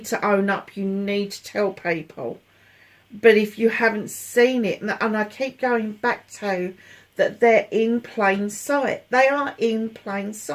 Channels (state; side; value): identical; both; correlation 1.00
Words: to own up, you need to tell people. But if you haven't seen it, and I keep going back to that, they're in plain sight. They are in plain